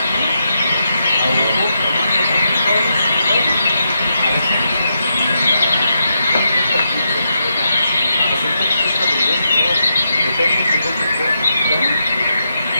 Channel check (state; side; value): inverted; both; correlation -0.83